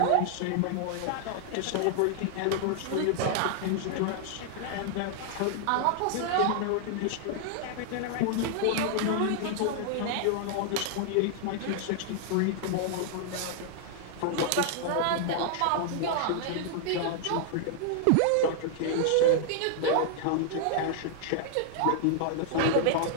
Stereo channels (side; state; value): both; different; correlation -0.01